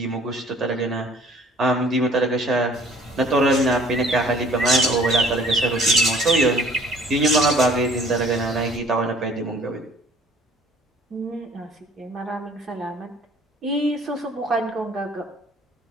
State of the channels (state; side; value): normal; both; correlation 0.54